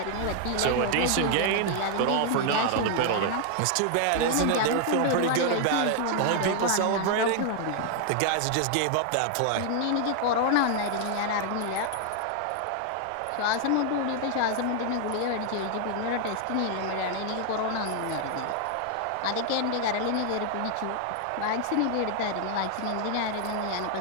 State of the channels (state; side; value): different; both; correlation 0.00